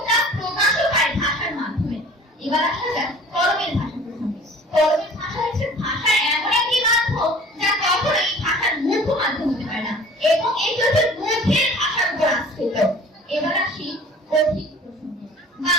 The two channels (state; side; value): normal; both; correlation 0.46